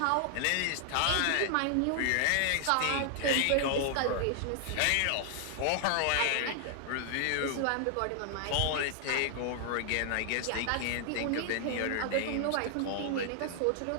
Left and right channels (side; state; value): both; different; correlation 0.00